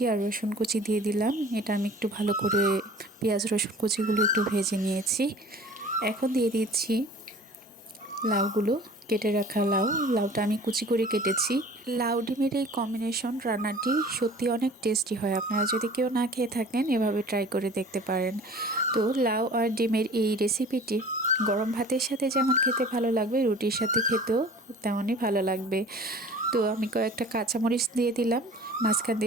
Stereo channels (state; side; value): normal; both; correlation 0.45